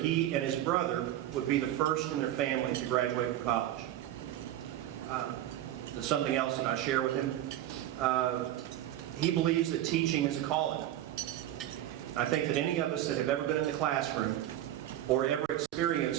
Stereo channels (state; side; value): quieter; left; 12.9 dB